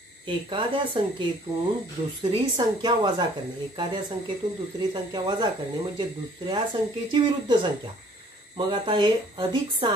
एखाद्या संख्येतून दुसरी संख्या वजा करणे. एखाद्या संख्येतून दुसरी संख्या वजा करणे म्हणजे दुसऱ्या संख्येची विरुद्ध संख्या. मग आता हे अधिक 6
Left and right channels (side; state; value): both; normal; correlation 0.56